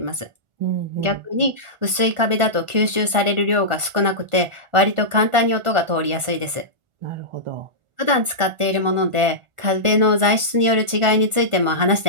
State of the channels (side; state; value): left; late; 1.4 ms